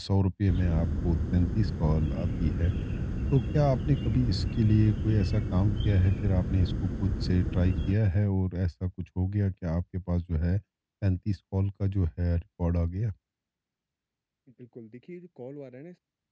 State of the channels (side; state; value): both; identical; correlation 1.00